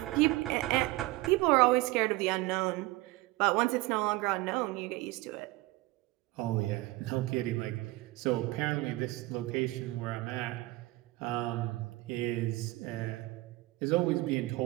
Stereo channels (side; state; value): left; quieter; 20.2 dB